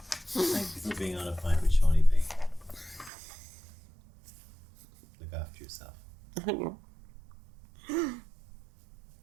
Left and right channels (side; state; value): left; drops out; at 3.1 s